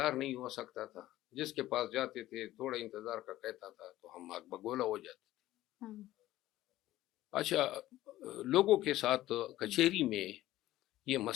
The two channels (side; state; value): right; quieter; 15.3 dB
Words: نہیں ہو سکتا تھا، جس کے پاس جاتے تھے تھوڑا انتظار کا کہتا تھا تو ہم آگ بگولا ہو جاتے تھے. اچھا، لوگوں کے ساتھ کچہری میں یہ